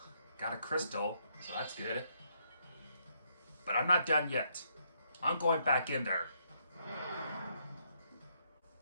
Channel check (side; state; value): both; inverted; correlation -0.73